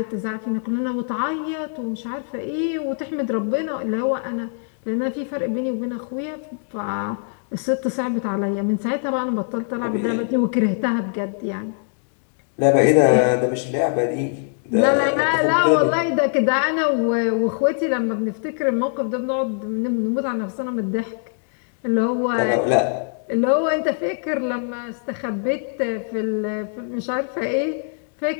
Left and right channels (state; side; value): silent; right; 64 dB below the other